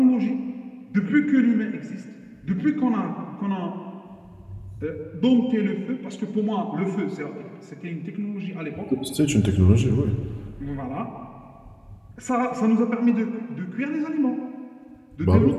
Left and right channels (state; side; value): identical; both; correlation 1.00